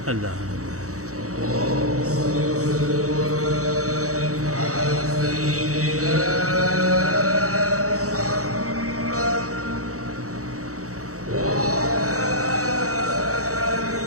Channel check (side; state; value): left; late; 0.65 ms